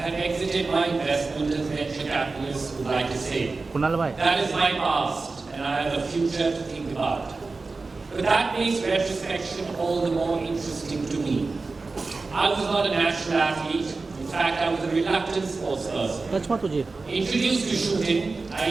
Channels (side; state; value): left; quieter; 3.8 dB